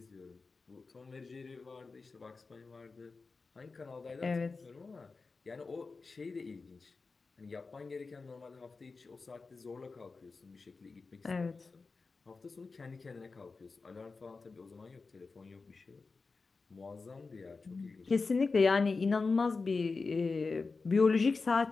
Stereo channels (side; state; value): right; quieter; 4.2 dB